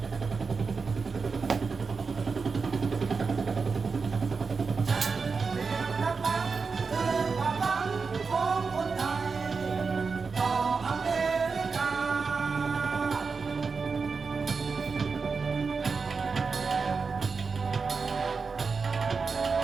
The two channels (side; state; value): left; quieter; 4.9 dB